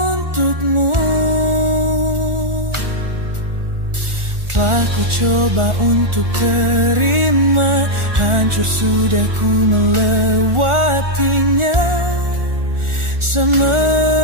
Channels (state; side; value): late; left; 1.4 ms